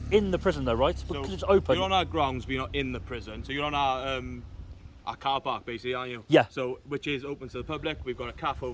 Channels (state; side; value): identical; both; correlation 1.00